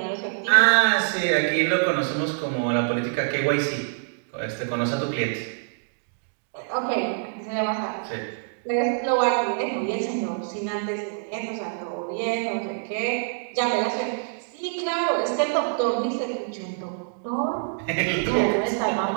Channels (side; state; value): left; silent; digital silence